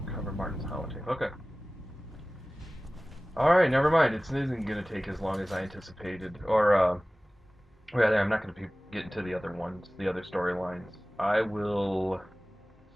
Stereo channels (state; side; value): normal; both; correlation 0.98